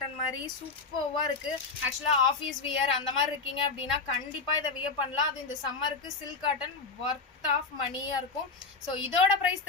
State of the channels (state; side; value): quieter; right; 4.3 dB